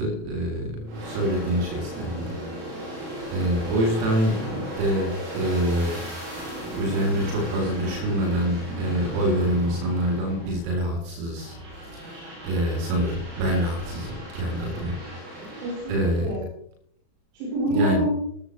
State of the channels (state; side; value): late; left; 36 ms